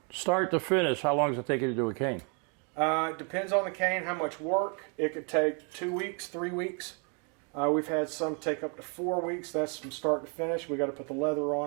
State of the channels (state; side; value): quieter; left; 36.8 dB